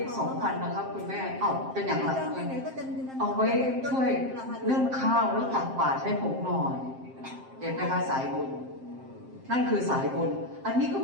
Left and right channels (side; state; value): left; late; 7.6 ms